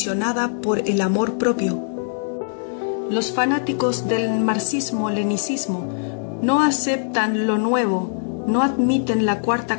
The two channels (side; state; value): right; silent; digital silence